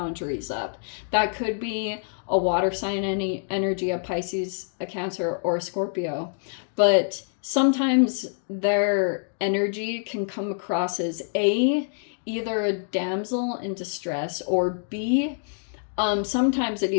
up. That could be a water sign energy, a Pisces, a Cancer, or a Scorpio, but sometimes their energy can come across as either a damsel in distress, or B, sometimes it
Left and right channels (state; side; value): silent; right; digital silence